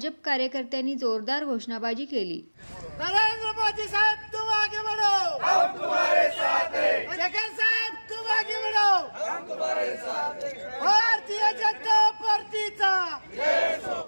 कार्यकर्त्यांनी जोरदार घोषणाबाजी केली। नरेंद्र मोदी साहब तुम आगे बढ़ो, हम तुम्हारे साथ हैं। शेखर साहब तुम आगे बढ़ो, हम तुम्हारे साथ हैं। भारतीय जनता पार्टीचा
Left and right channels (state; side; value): inverted; both; correlation -1.00